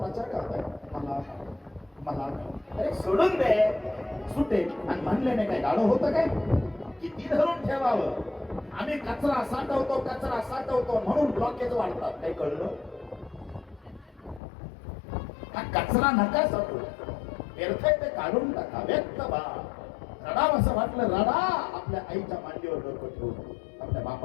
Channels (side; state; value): right; drops out; at 14.4 s